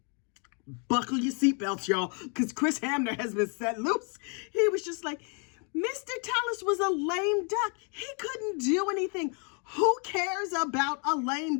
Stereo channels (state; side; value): quieter; right; 37.2 dB